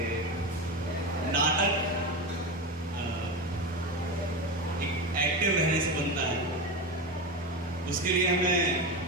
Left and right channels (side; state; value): both; normal; correlation 0.19